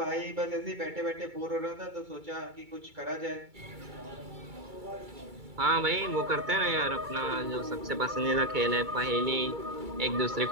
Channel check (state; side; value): late; left; 2.3 ms